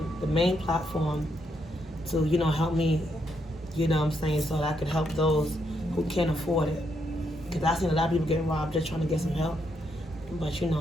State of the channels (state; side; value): normal; both; correlation 0.78